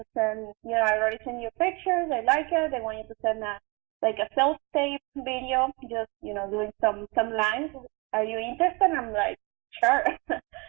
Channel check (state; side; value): quieter; left; 28.5 dB